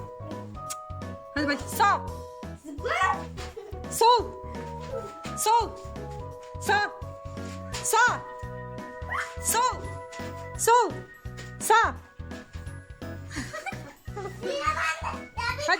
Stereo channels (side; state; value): both; identical; correlation 1.00